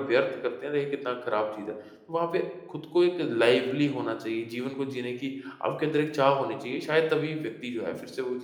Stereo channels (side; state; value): both; identical; correlation 1.00